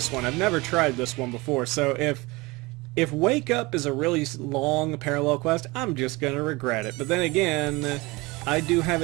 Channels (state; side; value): quieter; left; 23.5 dB